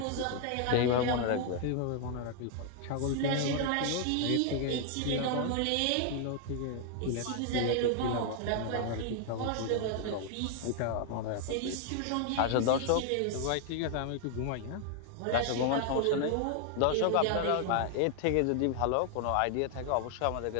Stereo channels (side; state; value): both; different; correlation 0.00